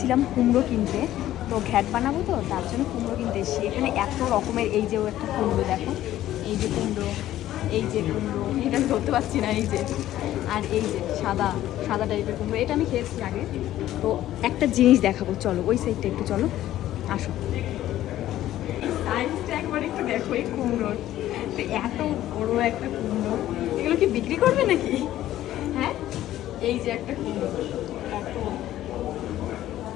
কুমড়ো কিনতে, তো ঘ্যাট বানাবো তো তার জন্য কুমড়ো কিনতে এসেছি। এখানে এত রকমের, এই যে একটা কুমড়ো দেখো, এই যে কুমড়ো, এই যে কুমড়ো, এটা আমি ধরতে পারছি না, এই যে, আর এই যে সাদা সাদা টাইপের কুমড়ো, এটা আমি খেয়েছি আগে। তো একটা জিনিস দেখাবো, চলো ওই সাইডটা একটু চলো, আসো। সাইজটা একবার একটু দেখো এই কুমড়োর, তো এত বড় একটা কুমড়ো, এগুলো কি বিক্রি করবে নাকি? হ্যাঁ, এই যে একটা কুমড়ো, এত,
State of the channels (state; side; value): quieter; right; 13.5 dB